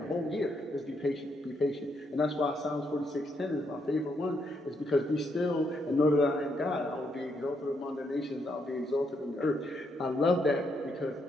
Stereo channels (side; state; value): both; normal; correlation 0.77